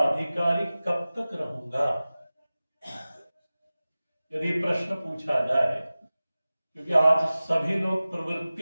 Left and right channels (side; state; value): both; inverted; correlation -0.97